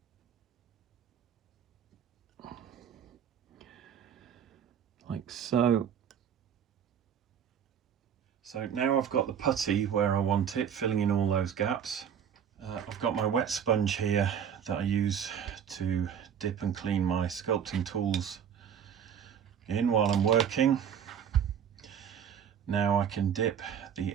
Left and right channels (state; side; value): quieter; left; 8.2 dB